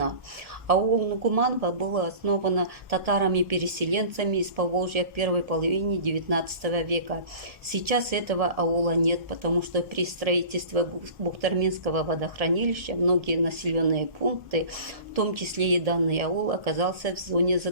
Аул Нугуманово было основано татарами-переселенцами из Поволжья в первой половине XIX века. Сейчас этого аула нет, потому что при строительстве Бухтарминского водохранилища многие населенные пункты, в том числе и данный аул, оказался в зоне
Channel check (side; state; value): left; late; 1.3 ms